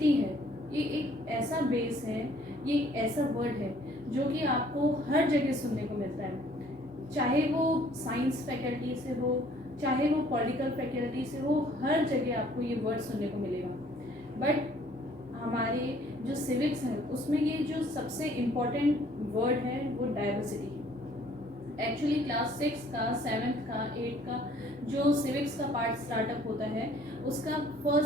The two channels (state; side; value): normal; both; correlation 0.59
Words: है ये एक ऐसा बेस है, ये एक ऐसा वर्ड है जो कि आपको हर जगह सुनने को मिलता है, चाहे वो साइंस फैकल्टी से हो, चाहे वो पॉलिटिकल फैकल्टी से हो, हर जगह आपको ये वर्ड सुनने को मिलेगा। बट हमारे जो सिविक्स है उसमें ये जो सबसे इम्पोर्टेंट वर्ड है वो डाइवर्सिटी है। एक्चुअली क्लास 6 का, 7th का, 8th का जो सिविक्स का पार्ट स्टार्टअप होता है उसका